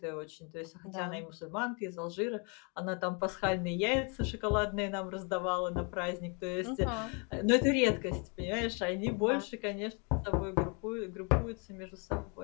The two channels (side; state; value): right; quieter; 34.9 dB